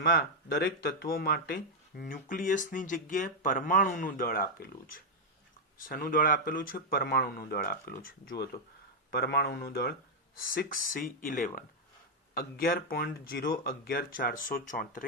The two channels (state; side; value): normal; both; correlation -0.01